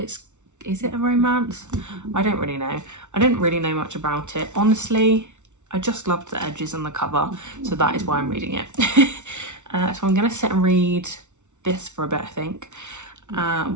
it a romance? I don't really know. I didn't really know much about it. Honestly, I just loved the edges on the cover, so that is why I'm reading it. So I'm going to sit and read this for a bit, I think,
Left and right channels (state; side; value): late; left; 0.84 ms